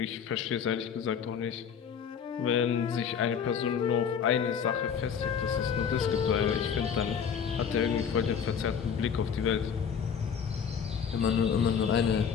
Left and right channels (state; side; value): quieter; right; 7.2 dB